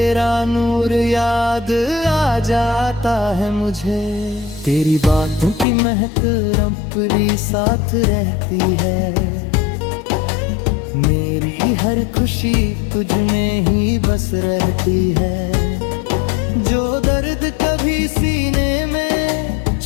नूर याद आ जाता है मुझे। तेरी बातों की महक रंपरी साथ रहती है, मेरी हर खुशी तुझ में ही बस रहती है। जो दर्द कभी सीने में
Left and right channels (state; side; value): drops out; right; at 5.7 s